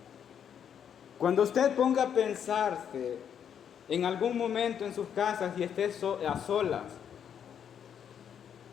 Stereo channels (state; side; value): quieter; right; 8.5 dB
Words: Cuando usted ponga a pensarse en algún momento en sus casas y esté a solas